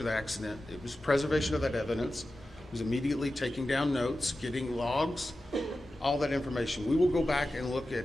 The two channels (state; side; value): normal; both; correlation 0.93